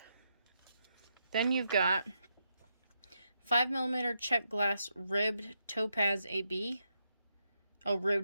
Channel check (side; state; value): both; inverted; correlation -0.82